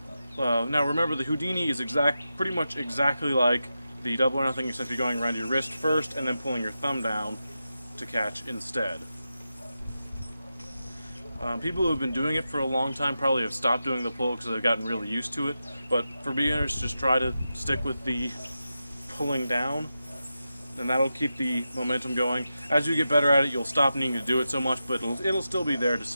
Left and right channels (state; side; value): inverted; both; correlation -0.90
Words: now remember the Houdini is pretty much exactly like the Double or Nothing, except you're going around your wrist first and then pulling your thumb down to catch instead. People who have been doing it for a long time probably have stopped doing the pull because they've gotten really used to it, but for beginners, just try to stick with the pulling down, and that'll keep the momentum going. As you get better at it, you'll stop needing to do it so much, but it'll still be there to